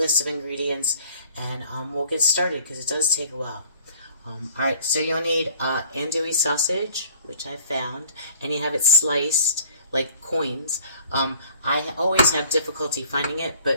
of ingredients, and we'll get started because it does take a while. Alright, so you'll need andouille sausage, which I found, and you have it sliced like coins. I always have difficulty finding it,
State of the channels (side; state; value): both; inverted; correlation -0.52